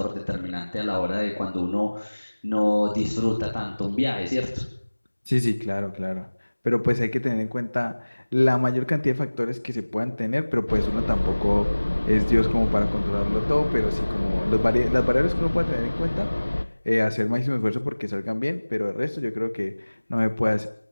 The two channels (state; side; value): inverted; both; correlation -1.00